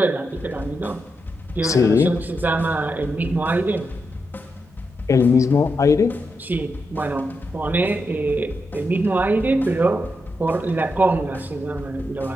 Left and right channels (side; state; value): both; normal; correlation 0.85